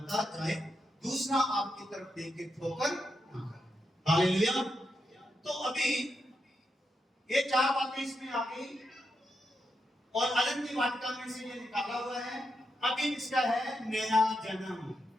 जाए, दूसरा आपकी तरफ देख के ठोकर ना करे। हालेलुया। तो अभी ये 4 बातें इसमें आ गई, और अनंत वाटिका में से ये निकाला हुआ है। अभी इसका है नया जन्म,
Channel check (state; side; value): normal; both; correlation 0.84